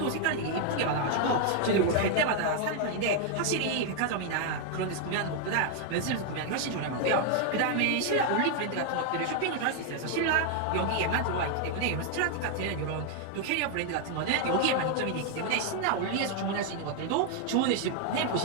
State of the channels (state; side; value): different; both; correlation 0.00